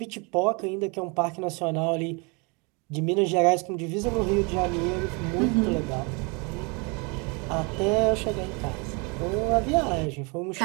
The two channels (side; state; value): left; quieter; 31.0 dB